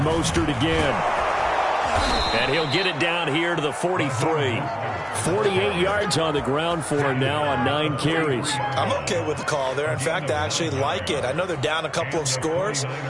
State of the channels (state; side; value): identical; both; correlation 1.00